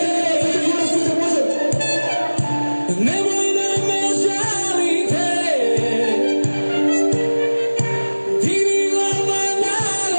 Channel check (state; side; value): inverted; both; correlation -1.00